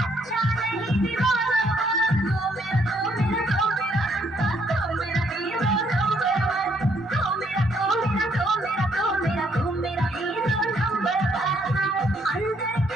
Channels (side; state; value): both; normal; correlation 0.69